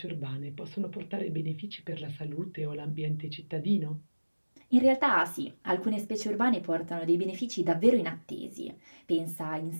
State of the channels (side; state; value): both; inverted; correlation -1.00